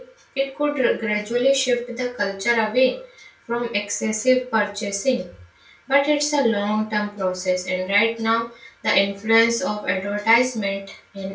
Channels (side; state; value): both; identical; correlation 1.00